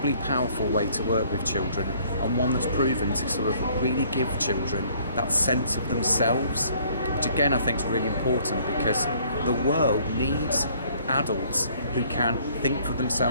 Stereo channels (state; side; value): inverted; both; correlation -0.60